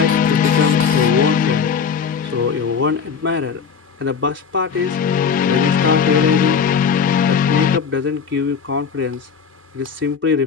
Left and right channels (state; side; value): quieter; right; 6.4 dB